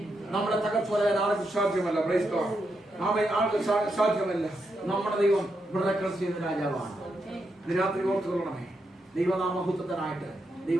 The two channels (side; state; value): both; normal; correlation 0.83